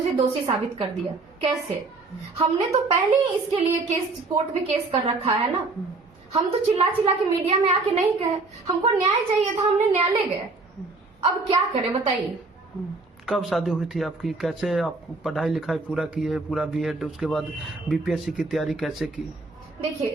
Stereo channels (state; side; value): quieter; left; 3.6 dB